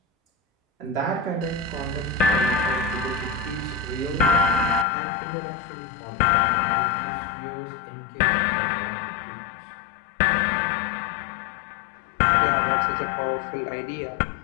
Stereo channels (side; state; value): right; drops out; at 4.9 s